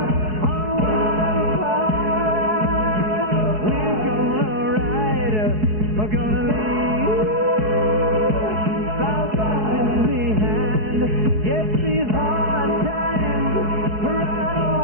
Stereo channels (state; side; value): late; left; 4.7 ms